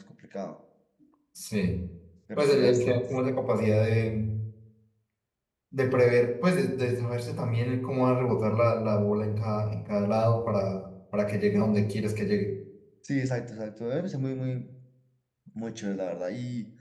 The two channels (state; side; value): identical; both; correlation 1.00